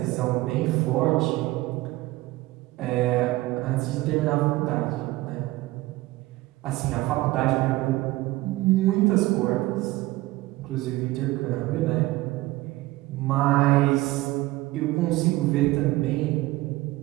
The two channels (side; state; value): left; quieter; 18.8 dB